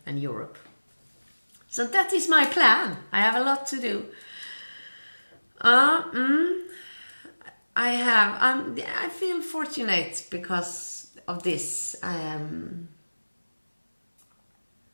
and Europe. So that is my plan. I have a lot to do. I feel fortunate because of this.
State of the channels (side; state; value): both; inverted; correlation -1.00